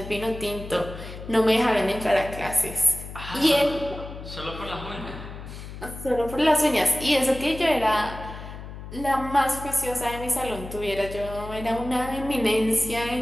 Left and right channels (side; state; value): left; noise; hum, 12 dB below the sound